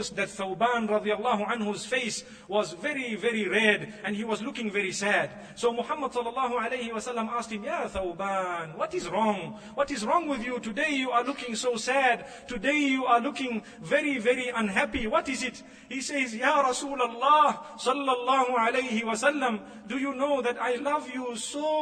that Thawban radiyallahu anhu's face was very red, and he was looking very sad. So Muhammad sallallahu alayhi wasallam asked him, Ya Thawban, what is wrong? What is wrong with you? Today you are looking so sad. Today you are looking very unhappy. What is it? He says, Ya Rasulullah sallallahu alayhi wasallam, do you know that I love you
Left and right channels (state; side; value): identical; both; correlation 1.00